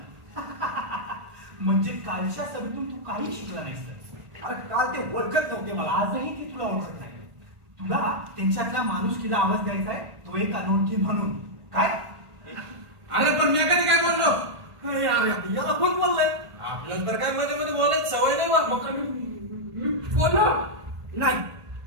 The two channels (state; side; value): late; left; 1.5 ms